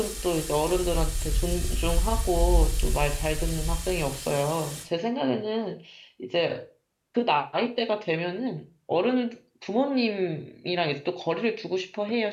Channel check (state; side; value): identical; both; correlation 1.00